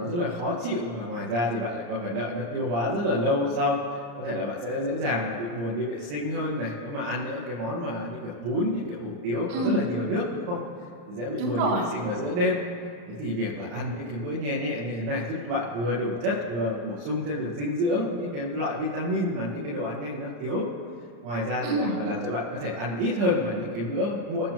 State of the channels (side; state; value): left; late; 35 ms